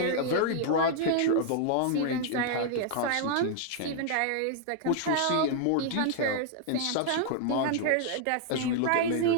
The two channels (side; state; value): both; different; correlation 0.00